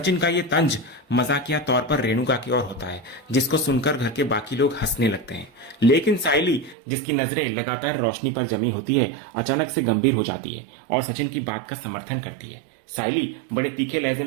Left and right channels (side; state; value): left; drops out; at 6.8 s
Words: का ये तंज मजाकिया तौर पर रेणुका की ओर होता है, जिसको सुनकर घर के बाकी लोग हंसने लगते हैं। लेकिन साइली, जिसकी नजरें लगातार रोशनी पर जमी होती है, अचानक से गंभीर हो जाती है और सचिन की बात का समर्थन करती है। साइली बड़े तीखे लहजे